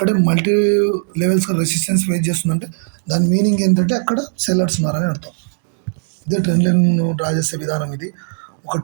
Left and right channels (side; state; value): left; silent; digital silence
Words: మల్టీ లెవెల్స్ రెసిస్టెన్స్ ఫేస్ చేస్తుందంటే దాని మీనింగ్ ఏంటంటే అక్కడ సెల్లర్స్ ఉన్నారని అర్థం. ఇదే ట్రెండ్ లైన్ డ్రా చేసే విధానం ఇది. ఒక